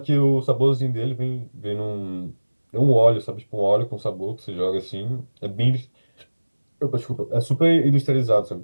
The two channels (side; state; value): both; inverted; correlation -1.00